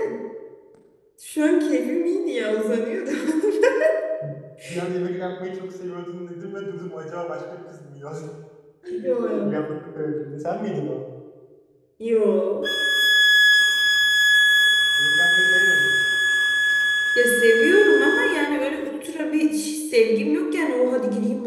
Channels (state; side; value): identical; both; correlation 1.00